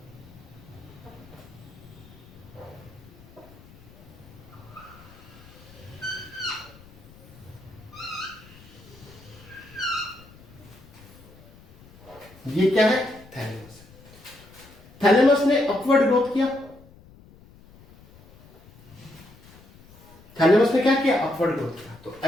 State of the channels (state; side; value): noise; left; rumble, 23 dB below the sound